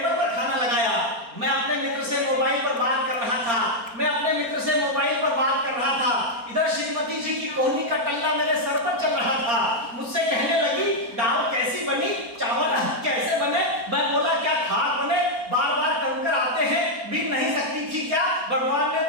पर खाना लगाया। मैं अपने मित्र से मोबाइल पर बात कर रहा था, इधर श्रीमती जी की कोहनी का टल्ला मेरे सर पर चल रहा था। मुझसे कहने लगी दाल कैसी बनी, चावल कैसे बने। मैं बोला क्या खाक बने, बार बार कंकर आते हैं, बीन नहीं सकती थी क्या, भगवान ने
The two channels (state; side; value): late; left; 4.3 ms